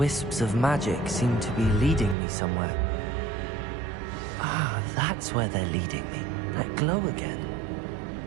of magic seem to be leading me somewhere. Ah, that's where they're leading me. That glow again.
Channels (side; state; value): left; drops out; at 2.1 s